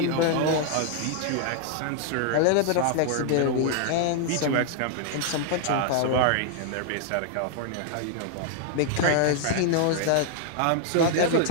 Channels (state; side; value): different; both; correlation 0.00